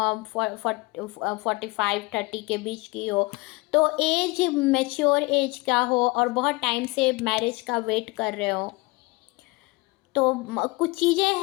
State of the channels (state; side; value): quieter; right; 24.1 dB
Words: के बीच की हो, तो एज मैच्योर एज का हो और बहुत टाइम से मैरिज का वेट कर रहे हो। तो कुछ चीज़ें